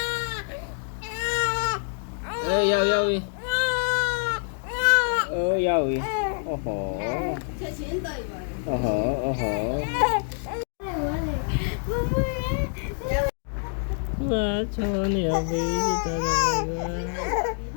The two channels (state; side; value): silent; right; 61 dB below the other